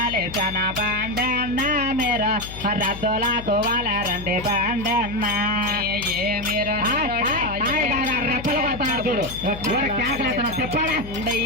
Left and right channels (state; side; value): noise; left; hum, 12 dB below the sound